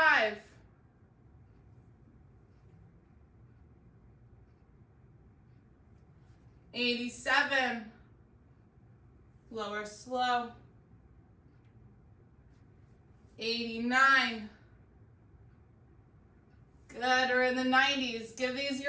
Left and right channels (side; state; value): both; identical; correlation 1.00